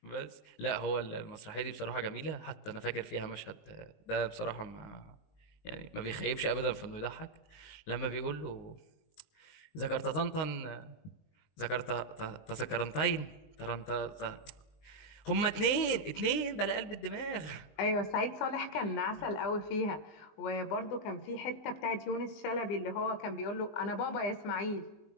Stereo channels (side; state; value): right; late; 20 ms